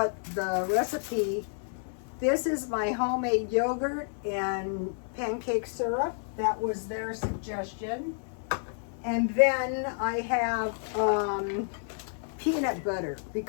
the recipe, this is my homemade yogurt and pancake syrup. That was their suggestion. And then I have peanut butter,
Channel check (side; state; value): right; silent; digital silence